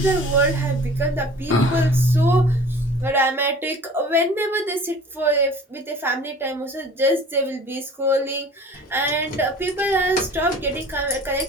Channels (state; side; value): normal; both; correlation 0.45